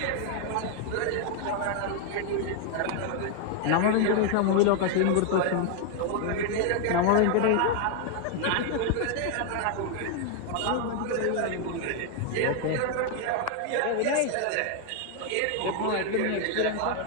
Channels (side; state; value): both; different; correlation 0.00